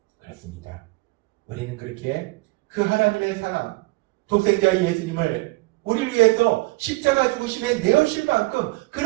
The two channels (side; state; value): left; quieter; 23.5 dB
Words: 그렇습니다. 우리는 그렇게 그 하나님의 사랑, 독생자 예수님을 우리를 위해서 십자가 죽으심에 내어주실 만큼